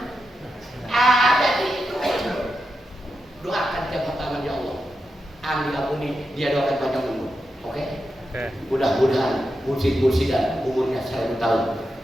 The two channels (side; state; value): both; normal; correlation 0.88